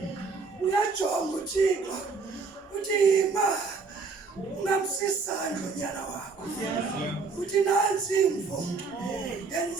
Uyajonga uThixo uthi yima ungamsisandla unyana wakho. Uthi nansi imvo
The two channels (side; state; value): left; quieter; 4.5 dB